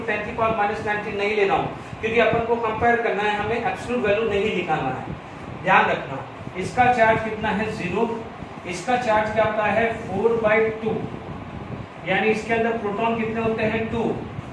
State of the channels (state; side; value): identical; both; correlation 1.00